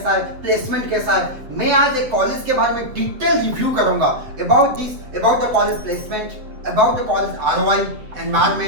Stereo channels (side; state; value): left; late; 7.8 ms